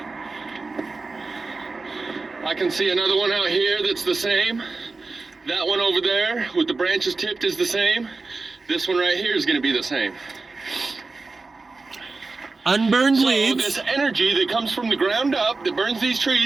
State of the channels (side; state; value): left; quieter; 3.8 dB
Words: I can see another one out here that's the same. That one over there with the branches tipped is the same. This one right here is going to be the same. Unburned So leaves. this energy that comes from the ground up, that burns these